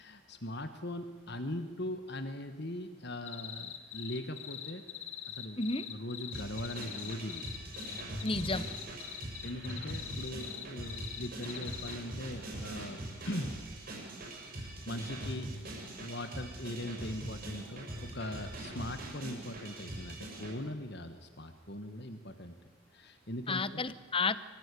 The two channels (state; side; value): normal; both; correlation 0.42